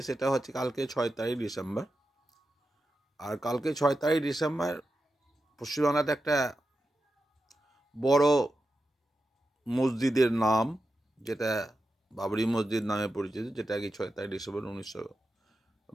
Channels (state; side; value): normal; both; correlation 0.90